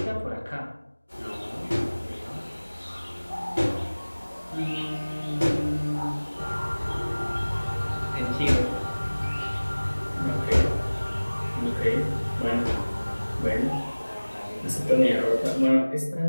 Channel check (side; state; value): both; inverted; correlation -1.00